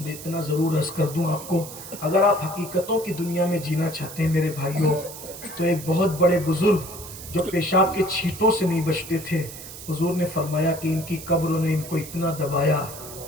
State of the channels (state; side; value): noise; right; hiss, 13 dB below the sound